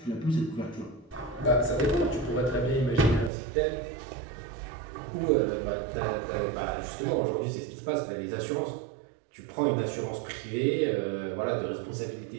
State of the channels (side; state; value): left; drops out; at 3.3 s